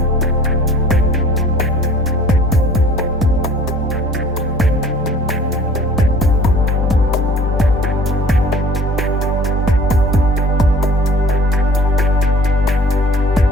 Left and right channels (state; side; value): normal; both; correlation 0.49